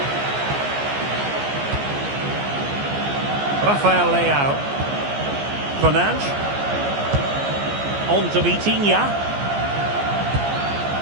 Rafael Leao. Fernandes. On to Vitinha.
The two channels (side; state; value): left; late; 14 ms